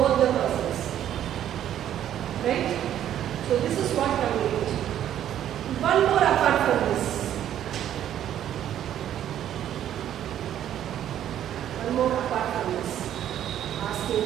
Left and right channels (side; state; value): left; quieter; 10.9 dB